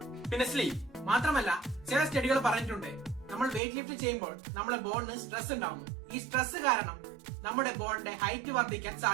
പിന്നെ സ്ലീപ്പ്. മാത്രമല്ല ചില സ്റ്റഡികൾ പറഞ്ഞിട്ടുണ്ട് നമ്മൾ വെയിറ്റ് ലിഫ്റ്റ് ചെയ്യുമ്പോൾ നമ്മുടെ ബോണിന് സ്ട്രെസ് ഉണ്ടാവുന്നു. ഈ സ്ട്രെസ് കാരണം നമ്മുടെ ബോണിന്റെ ഹൈറ്റ് വർദ്ധിക്കാൻ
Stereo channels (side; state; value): left; drops out; at 3.6 s